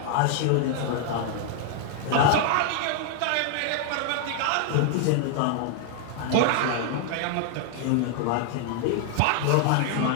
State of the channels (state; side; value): different; both; correlation 0.00